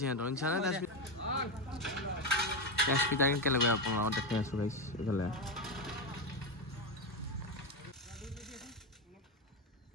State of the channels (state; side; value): normal; both; correlation 0.11